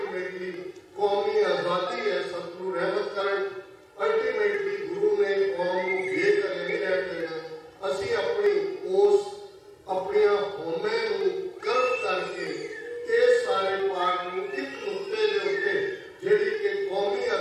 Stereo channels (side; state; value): both; identical; correlation 1.00